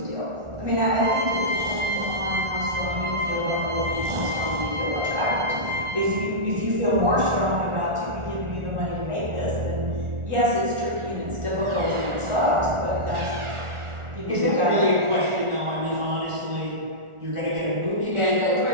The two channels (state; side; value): late; left; 1.4 ms